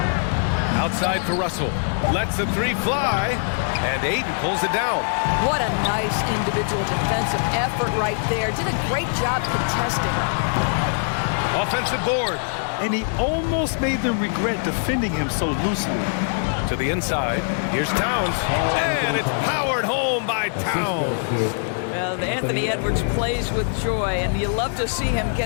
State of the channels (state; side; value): silent; right; 64 dB below the other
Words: Outside for Russell. Lets the 3 fly. And Ayton pulls it down. What a nice individual defensive effort right there. Did a great job contesting. Offensive board. And he almost made them regret defending him so loosely. To the inside. Here's Towns. And it's powered home by Towns. Well, Anthony Edwards plays with joy, and you love to see him